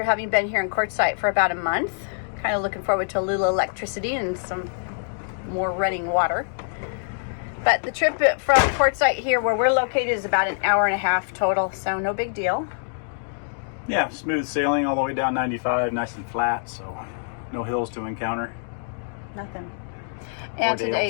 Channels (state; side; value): silent; right; digital silence